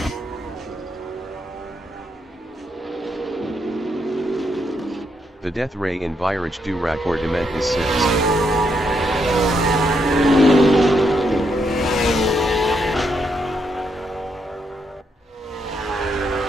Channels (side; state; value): both; normal; correlation 0.78